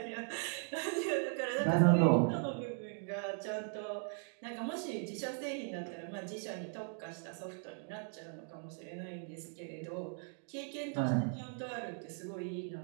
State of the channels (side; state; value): left; silent; 52 dB below the other